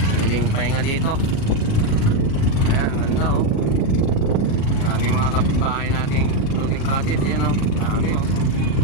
Pwedeng pahinga dito. Ayan, ganda oh. Daming mga kapitbahay nating floating cottage yan oh. Dami oh.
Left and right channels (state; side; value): late; right; 36 ms